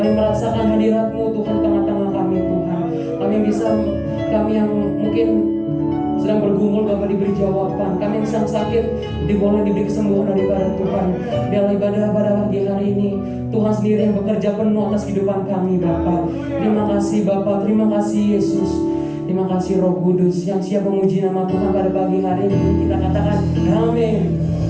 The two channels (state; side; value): identical; both; correlation 1.00